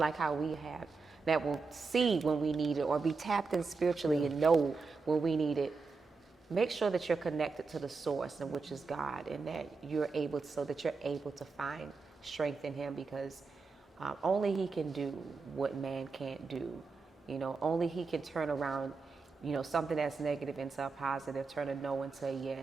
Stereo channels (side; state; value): left; quieter; 4.4 dB